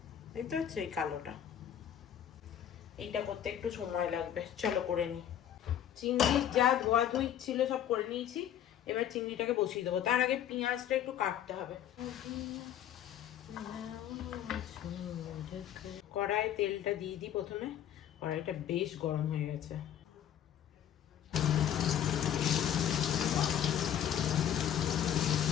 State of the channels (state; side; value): quieter; right; 10.3 dB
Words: দেখতে পাচ্ছ এই কালোটা, এইটা করতে একটু সময় লাগবে। চলো করে নিই। চিংড়ির যা ধোয়া ধুই ছিল সব করে নিয়েছি, এবার চিংড়িটাকে বসিয়ে দেবো। তার আগে পেঁয়াজটা একটু কাটতে হবে। কড়াই তেলটা দিয়ে দিই প্রথমে, কড়াইটা বেশ গরম হয়ে গেছে।